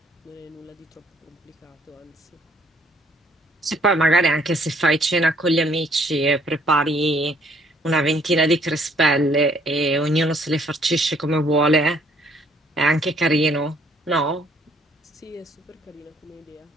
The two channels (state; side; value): normal; both; correlation 0.63